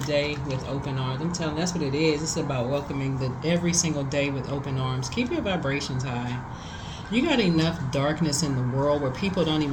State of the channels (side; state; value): both; identical; correlation 1.00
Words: you, that's what it is. It's about welcoming every single day with open arms. Keep your vibrations high. You got enough darkness in the world where people don't